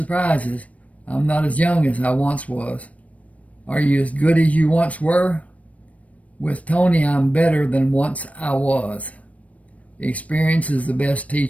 I'm not as young as I once was. Are you as good as you once were? With Tony, I'm better than once I was. Experience is the best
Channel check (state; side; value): late; right; 0.066 ms